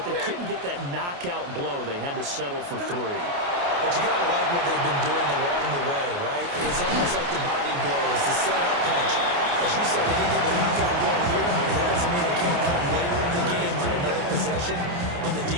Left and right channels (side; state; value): left; late; 28 ms